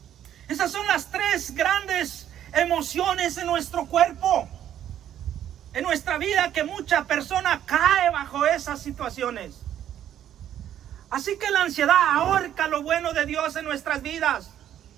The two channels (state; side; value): quieter; left; 10.8 dB